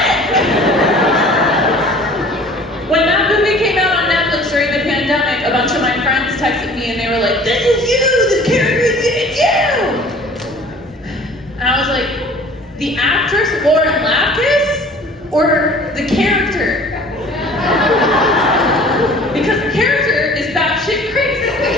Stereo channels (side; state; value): both; normal; correlation 0.48